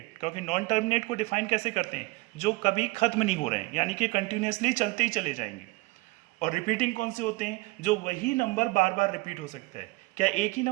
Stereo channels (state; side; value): quieter; left; 23.2 dB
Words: क्योंकि नॉन टर्मिनेट को डिफाइन कैसे करते हैं? जो कभी खत्म नहीं हो रहे हैं, यानी कि कंटिन्यूसली चलते ही चले जाएंगे। और रिपीटिंग कौन से होते हैं? जो वही नंबर बार बार रिपीट हो सकता है। क्या एक ही